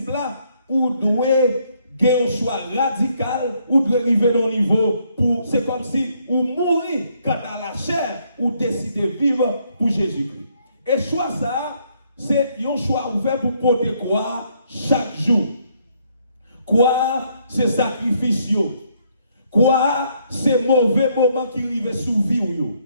là, vous devez gagner un choix radical, ou devez arriver à un niveau pour, c'est comme si vous mourrez quant à la chair, ou décidez de vivre pour Jésus-Christ. Et choix ça, c'est un choix ouvert pour porter quoi chaque jour. Quoi, c'est sacrifice. Quoi, c'est mauvais moment qui arrive sous vie.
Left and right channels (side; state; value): both; inverted; correlation -0.70